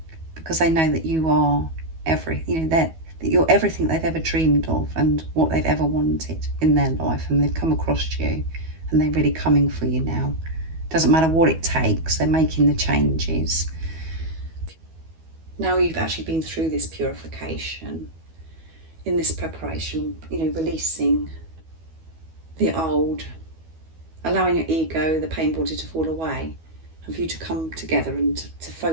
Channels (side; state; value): left; late; 12 ms